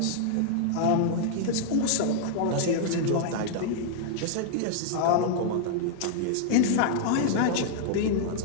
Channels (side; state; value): both; different; correlation -0.01